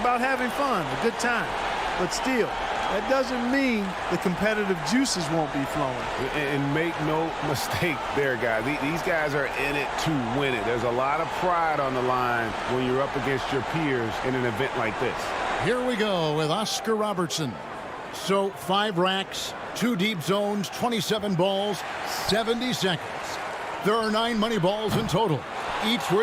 having fun, a good time. But still, that doesn't mean the competitive juices won't be flowing. And make no mistake there, guys. These guys are in it to win it. There's a lot of pride on the line when you're up against your peers in an event like this. Here we go with Oscar Robertson. So 5 racks, 2 deep zones, 27 balls, 70 seconds. There are 9 money balls in total, each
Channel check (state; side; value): identical; both; correlation 1.00